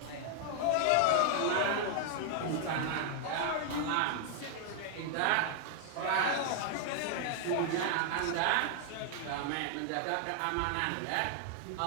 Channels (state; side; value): different; both; correlation 0.00